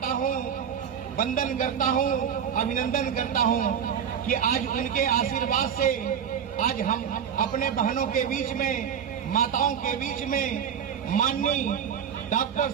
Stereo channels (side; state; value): left; quieter; 8.1 dB